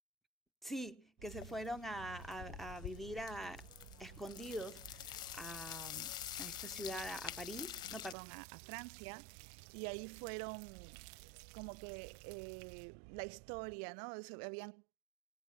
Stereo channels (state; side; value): drops out; left; at 8.2 s